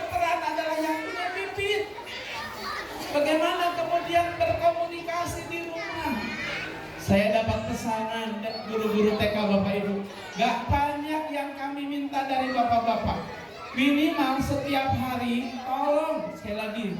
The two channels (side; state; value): both; identical; correlation 1.00